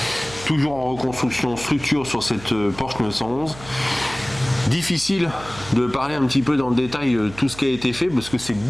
Toujours en reconstruction structure sur cette Porsche 911. Difficile de parler un petit peu dans le détail tout ce qui a été fait parce que c'est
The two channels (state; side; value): noise; right; hum, 17 dB below the sound